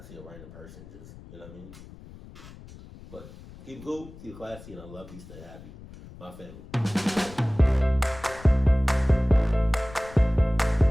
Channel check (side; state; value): left; noise; rumble, 18 dB below the sound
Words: see a random person just, you know what I mean? But keep cool, keep classy, and I love you. Stay happy, my family.